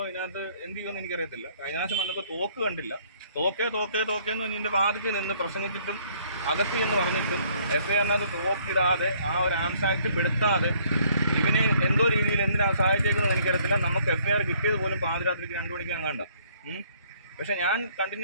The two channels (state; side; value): inverted; both; correlation -0.63